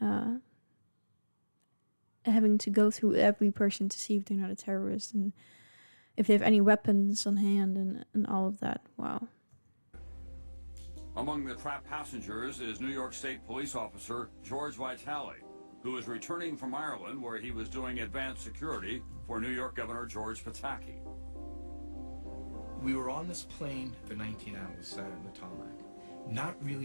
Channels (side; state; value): both; inverted; correlation -1.00